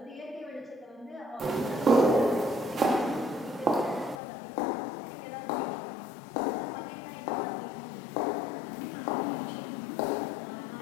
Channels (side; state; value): right; drops out; at 4.2 s